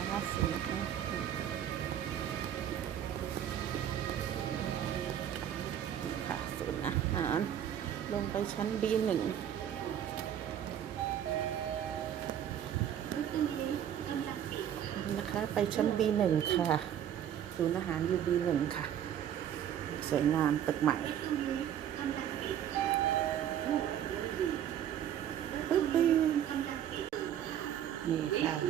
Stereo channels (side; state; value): left; quieter; 10.1 dB